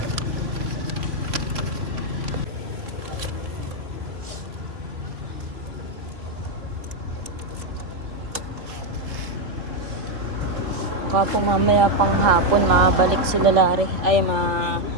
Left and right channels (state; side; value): late; left; 3.0 ms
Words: Baka po mamaya pang hapon makabalik sila Larry. Ay